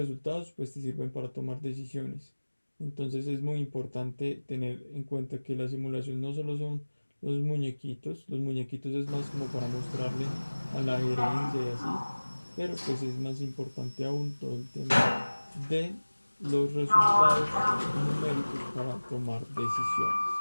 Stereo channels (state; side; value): inverted; both; correlation -1.00